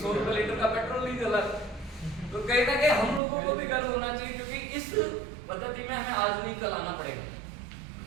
रुपए लीटर का पेट्रोल नहीं जला। तो कहीं ना कहीं हम लोगों को भी गर्व होना चाहिए, क्योंकि इस पद्धति में हमें आज नहीं कल आना पड़ेगा।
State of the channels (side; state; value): left; drops out; at 3.2 s